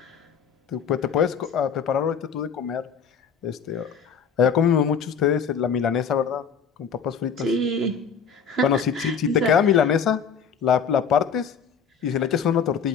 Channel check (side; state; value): right; quieter; 6.5 dB